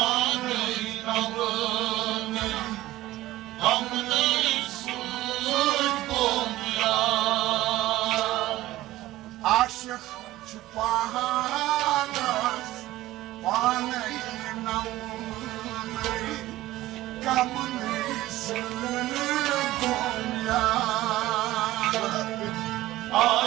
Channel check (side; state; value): left; quieter; 16.3 dB